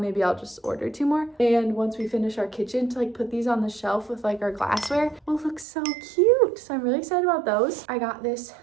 I'll just order 2 more. And once we finish our kitchen to like put these on the shelf with like our glassware will look so cute. So I'm really excited about those. I got this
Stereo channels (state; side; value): drops out; left; at 5.7 s